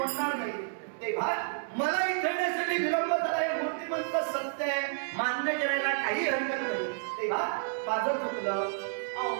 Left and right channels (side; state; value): left; silent; digital silence